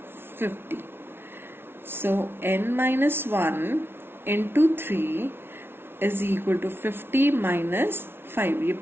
50. So n minus 1 into 3 is equal to 50 minus 5. ये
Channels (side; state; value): left; late; 0.11 ms